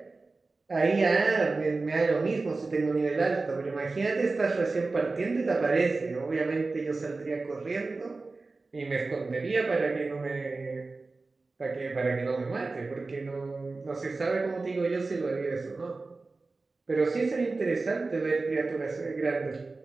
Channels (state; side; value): quieter; left; 3.7 dB